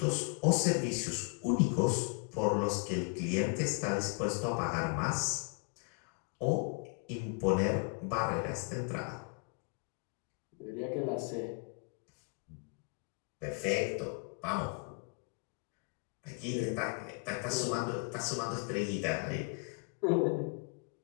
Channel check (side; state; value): right; quieter; 34.2 dB